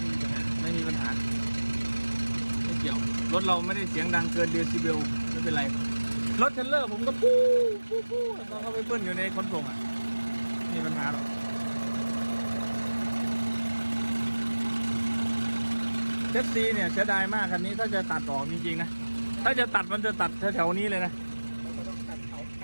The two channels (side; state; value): both; inverted; correlation -1.00